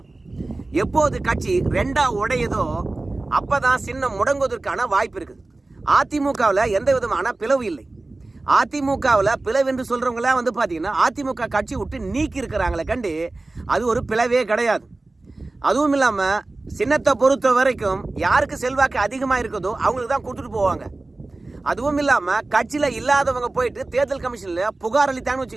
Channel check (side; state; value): left; quieter; 3.1 dB